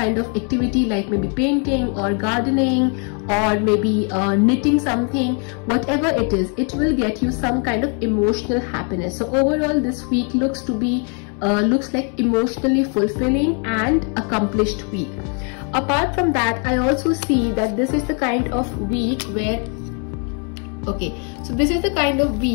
of activity, like maybe painting or gardening or maybe knitting something. Whatever it is, it will get you some kind of emotional happiness. So overall this week looks like emotionally fulfilling and accomplished week. Apart from that, I also see that this is the kind of week where, okay, so this is the kind of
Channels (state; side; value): quieter; right; 39.3 dB